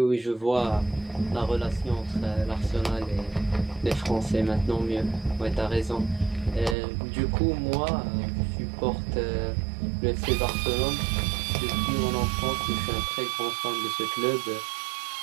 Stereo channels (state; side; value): drops out; left; at 6.8 s